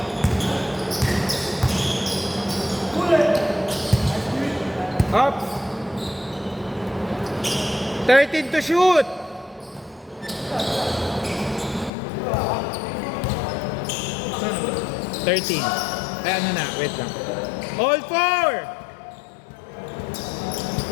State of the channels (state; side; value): drops out; right; at 11.9 s